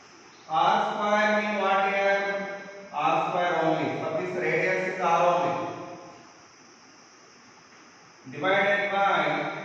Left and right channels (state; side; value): identical; both; correlation 1.00